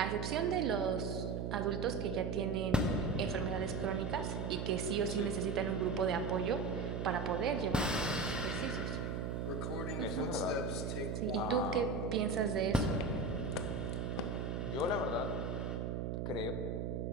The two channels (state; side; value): noise; right; hum, 2 dB below the sound